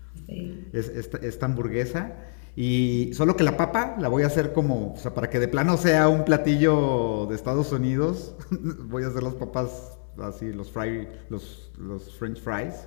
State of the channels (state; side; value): silent; right; 61 dB below the other